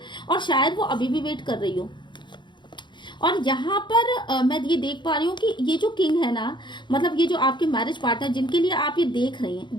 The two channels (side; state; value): right; late; 0.22 ms